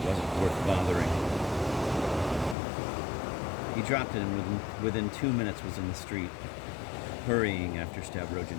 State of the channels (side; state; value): right; drops out; at 2.6 s